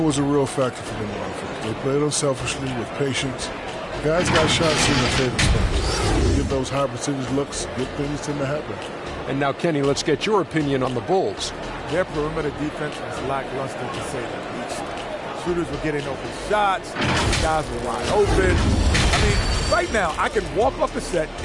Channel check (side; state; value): both; identical; correlation 1.00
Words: was a real factor for them on offense. They played unselfishly with patience. Guys got shots in their favorite spots. They get those high percentage looks, good things tend to happen. And now, Kenny, let's get your opinion on the Bulls. Their perimeter defense was lackluster, to say the least. Shooters were getting open shots. Guys were wide open. I mean, right now, I can walk up the set